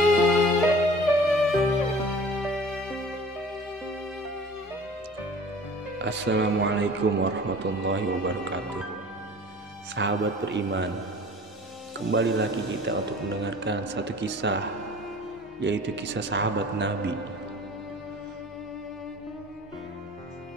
Assalamualaikum warahmatullahi wabarakatuh. Sahabat beriman, kembali lagi kita untuk mendengarkan satu kisah, yaitu kisah sahabat Nabi.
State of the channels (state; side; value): normal; both; correlation 0.44